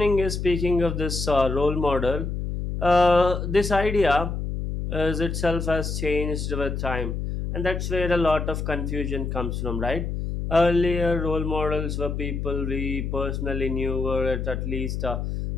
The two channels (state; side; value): noise; left; hum, 3 dB below the sound